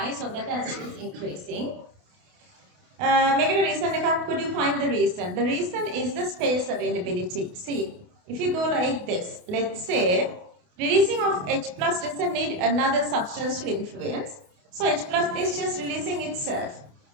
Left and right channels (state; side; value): late; left; 28 ms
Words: so that acidity is increasing. Make it a reason, could you find the reason? The reason is the space availability. See, if you go like this, let's say, releasing of H plus doesn't need another substance to influence. So H plus is just releasing itself